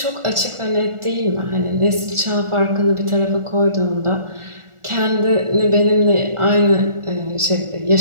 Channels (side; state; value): left; late; 1.4 ms